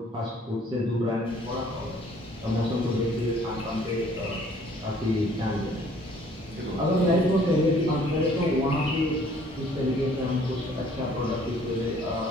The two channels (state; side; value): normal; both; correlation 0.58